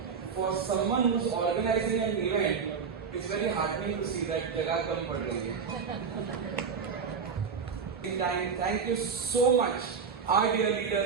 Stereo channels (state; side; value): quieter; left; 6.0 dB